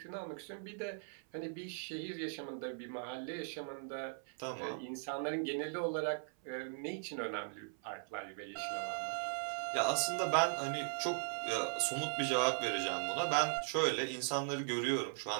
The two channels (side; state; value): left; silent; 52 dB below the other